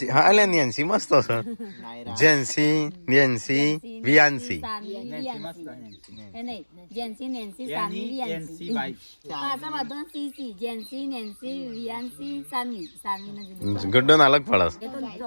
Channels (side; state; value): both; inverted; correlation -1.00